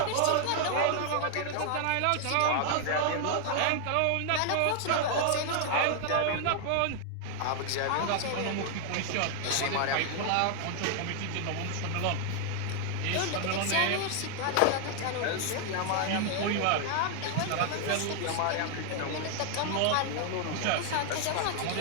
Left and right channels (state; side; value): different; both; correlation 0.00